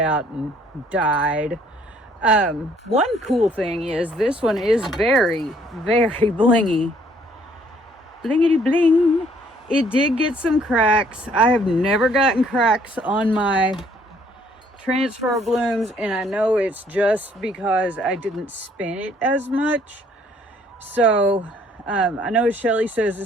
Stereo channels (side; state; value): both; normal; correlation 0.63